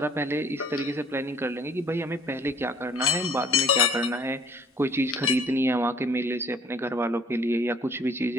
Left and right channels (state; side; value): normal; both; correlation 0.55